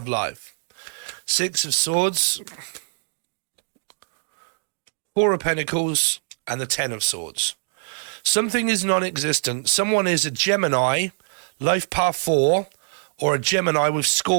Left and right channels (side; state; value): left; silent; digital silence